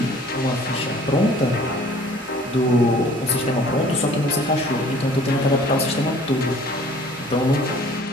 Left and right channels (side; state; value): both; normal; correlation 0.52